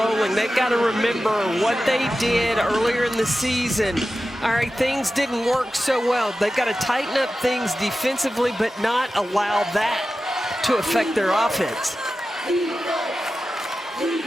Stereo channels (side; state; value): both; normal; correlation 0.93